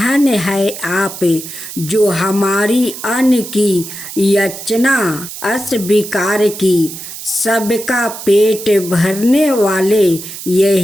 है आप जो हमारी अन्न की याचना अस्वीकार की। सबका पेट भरने वाले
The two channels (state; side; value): noise; right; hiss, 11 dB below the sound